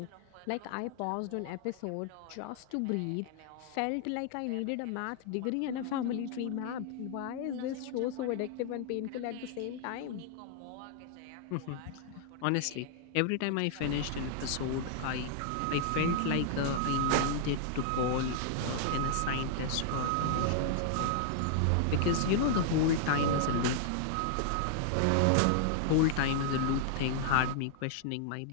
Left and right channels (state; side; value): different; both; correlation -0.01